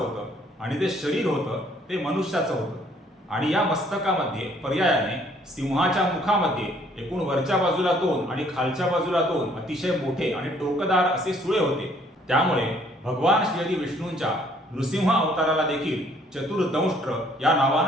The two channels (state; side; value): normal; both; correlation 0.62